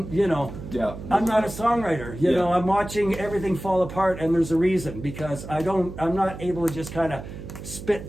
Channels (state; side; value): noise; right; hum, 11 dB below the sound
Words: not a songwriter, I'm watching everything fall apart, and there's a reason, because I'm not able to just kind of